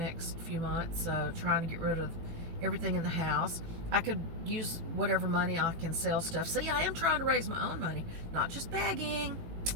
few months, trying to get rid of everything in the house. I could use whatever money I can sell stuff. See, I am trying to raise my own money, not just begging.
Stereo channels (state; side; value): late; left; 18 ms